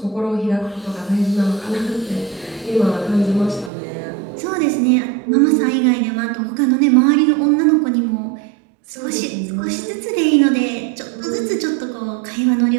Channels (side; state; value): left; drops out; at 3.7 s